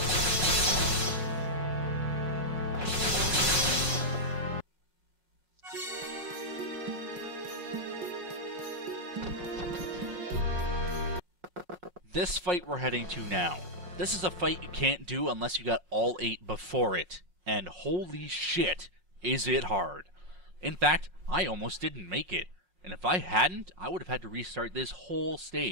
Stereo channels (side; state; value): left; late; 5.5 ms